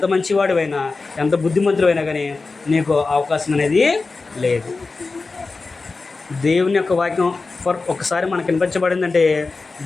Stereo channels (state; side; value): quieter; right; 3.9 dB